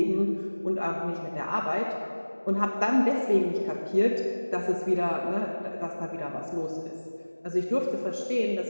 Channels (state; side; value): inverted; both; correlation -1.00